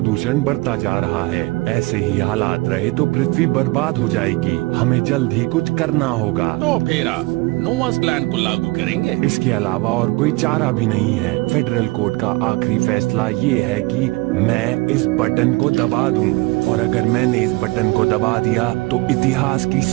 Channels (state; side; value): quieter; left; 23.0 dB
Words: बढ़ता जा रहा है। ऐसे ही हालात रहे तो पृथ्वी बर्बाद हो जाएगी। हमें जल्द ही कुछ करना होगा। तो फिर आप नोवास प्लान को लागू करेंगे? इसके अलावा और कोई चारा भी नहीं है। फेडरल कोर्ट का आखिरी फैसला ये है कि मैं इस बटन को दबा दूं, और अगर मैंने इस बटन को दबा दिया तो इतिहास की